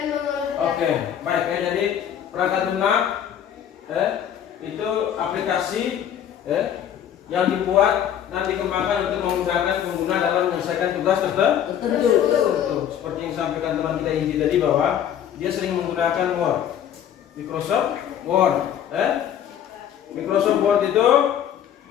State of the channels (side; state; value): right; quieter; 9.7 dB